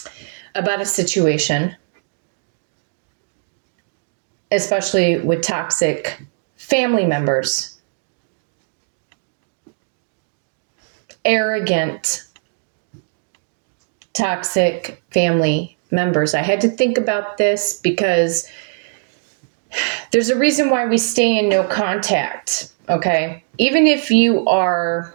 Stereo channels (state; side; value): silent; left; digital silence